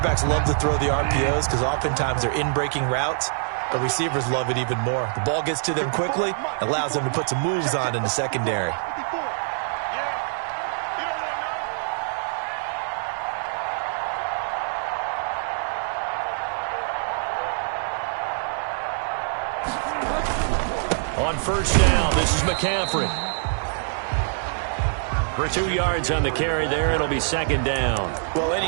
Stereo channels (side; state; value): left; silent; digital silence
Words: love to throw the RPOs because oftentimes they're in-breaking routes. But receivers love it even more. The ball gets to them quickly, allows them to put some moves on in the secondary. On first down, this is McCaffrey. For 2 yards on the carry there, it'll be second down. Well,